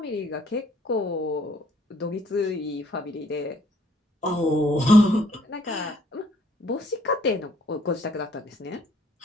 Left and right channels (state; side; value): normal; both; correlation 0.63